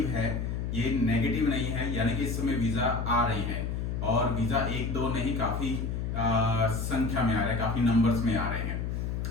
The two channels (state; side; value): noise; left; hum, 2 dB below the sound